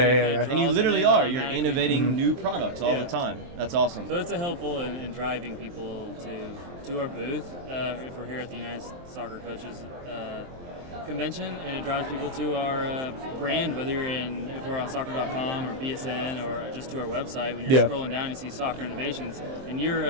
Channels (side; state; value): left; late; 23 ms